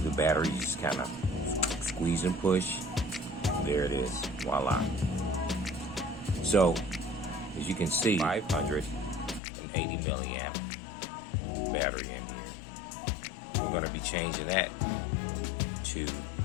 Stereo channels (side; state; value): right; drops out; at 9.4 s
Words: the battery, you just kind of squeeze and push. There it is. Voila. So, as you can see, 580 milliamp battery in here. We're going to be changing that to